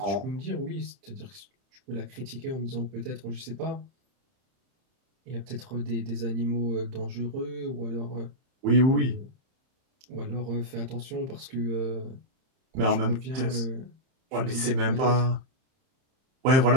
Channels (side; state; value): left; late; 31 ms